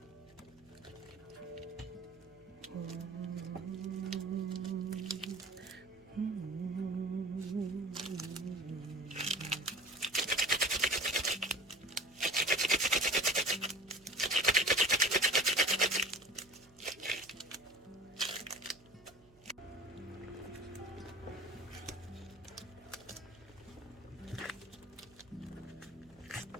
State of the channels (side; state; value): right; noise; hum, 28 dB below the sound